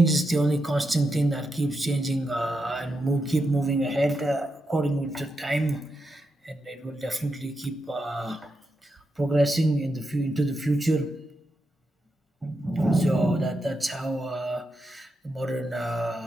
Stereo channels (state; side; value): normal; both; correlation 0.86